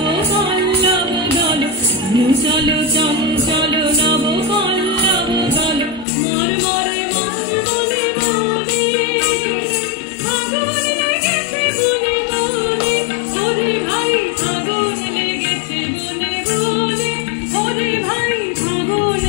পল্লব দল, চলো চঞ্চল নব পল্লব দল, মর মরে মর বনে বনে, আগুন লেগেছে বনে বনে, ওরে ভাই আগুন লেগেছে বনে বনে, ওরে ভাই আগুন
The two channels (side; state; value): right; drops out; at 6.1 s